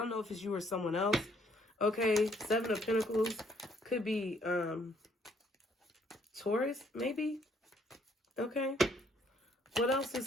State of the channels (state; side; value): normal; both; correlation 0.66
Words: know if it's you or someone else. Okay, 7 of Pentacles could be Taurus, maybe. Okay. What else